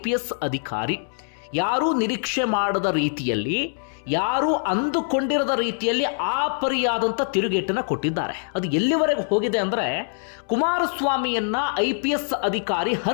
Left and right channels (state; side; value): silent; right; 63 dB below the other